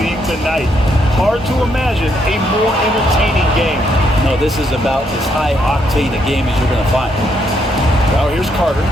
tonight. Hard to imagine a more entertaining game. No, this is about as high octane a game as you're going to find. Now here's Carter.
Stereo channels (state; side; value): normal; both; correlation 0.74